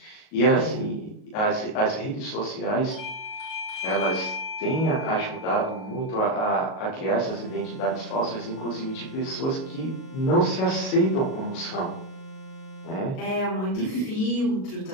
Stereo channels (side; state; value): right; late; 37 ms